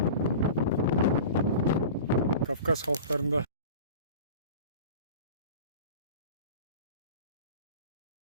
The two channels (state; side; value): inverted; both; correlation -0.36